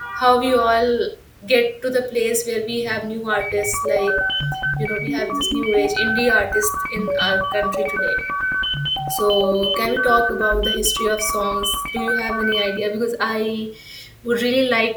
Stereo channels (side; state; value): both; identical; correlation 1.00